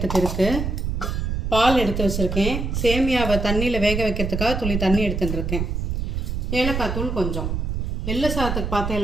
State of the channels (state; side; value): noise; right; rumble, 2 dB below the sound